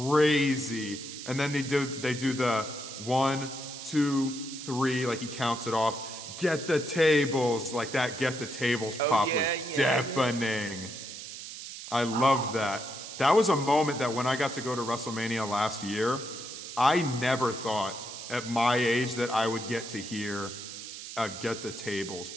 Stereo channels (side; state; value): right; noise; hiss, 10 dB below the sound